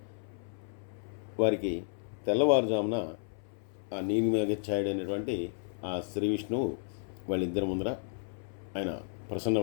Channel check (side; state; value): right; silent; 56 dB below the other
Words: వారికి తెల్లవారుజామున ఆ నీలిమేఘఛాయుడైనటువంటి ఆ శ్రీ విష్ణువు వాళ్ళిద్దరి ముందర ఆయన